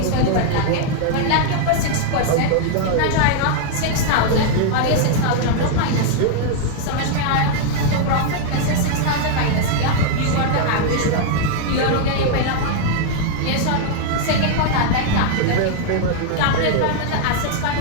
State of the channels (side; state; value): both; different; correlation 0.00